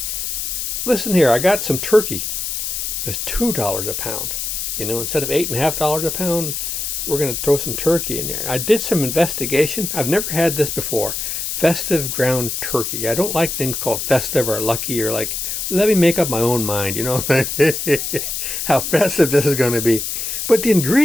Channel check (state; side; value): noise; left; hiss, 3 dB below the sound